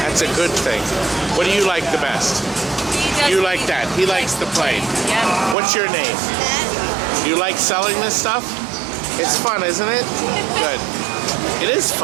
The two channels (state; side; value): drops out; left; at 5.6 s